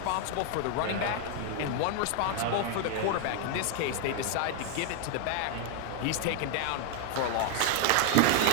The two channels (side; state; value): both; different; correlation 0.00